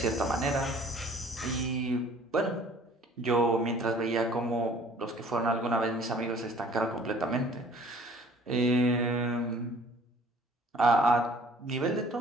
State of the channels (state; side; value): normal; both; correlation 0.53